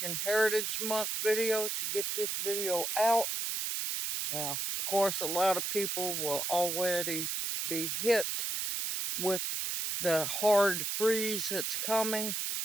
Heritage Month videos to get this video out. Now, of course, a lot of people will already be hit with the hard freeze that's coming,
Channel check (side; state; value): right; noise; hiss, 1 dB below the sound